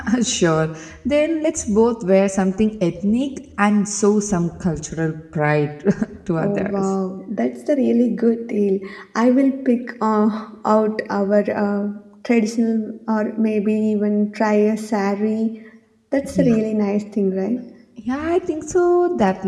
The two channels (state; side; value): identical; both; correlation 1.00